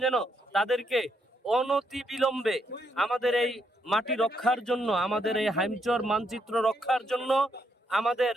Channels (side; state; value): both; normal; correlation 0.76